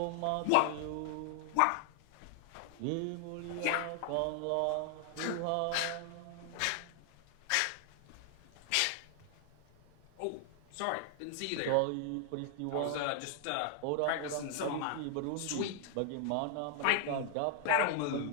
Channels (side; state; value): both; different; correlation 0.00